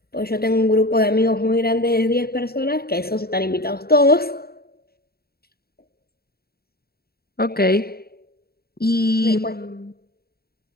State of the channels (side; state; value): right; late; 0.45 ms